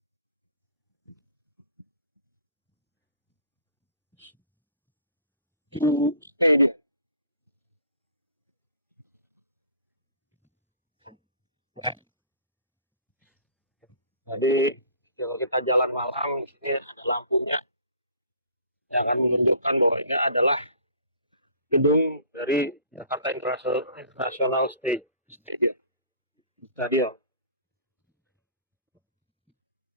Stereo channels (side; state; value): both; inverted; correlation -0.49